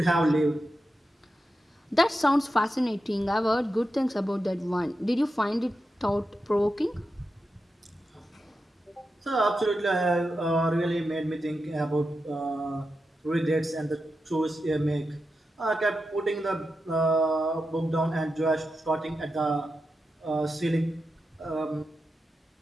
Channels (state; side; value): normal; both; correlation 0.89